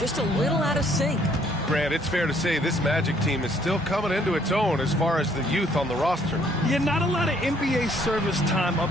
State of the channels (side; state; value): both; normal; correlation 0.64